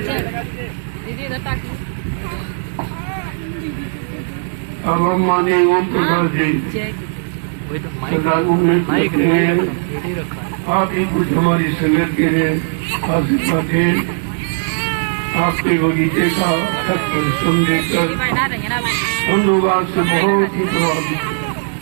अब हम माननीय ओम प्रकाश जी वही तो सदागुरु में माइक कहते हैं, रेडी रखा है। आप ही कुछ हमारी संगत के लिए आशीर्वाद दें। आपके बगीचे का खत परिश्रम देकर हम लोग आज से बहुत ही प्रभावित हैं।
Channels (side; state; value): left; silent; 68 dB below the other